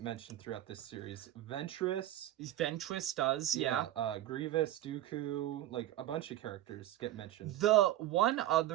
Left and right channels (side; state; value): left; quieter; 13.9 dB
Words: mentioned throughout this series. Ventress does, yeah. Grievous, Dooku, like a bunch of characters get mentioned. The one